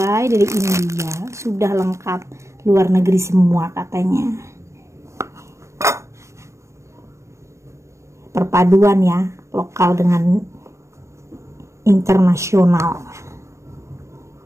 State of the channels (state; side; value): late; left; 0.14 ms